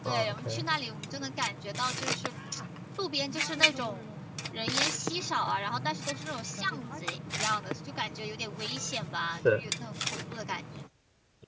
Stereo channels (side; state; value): both; identical; correlation 1.00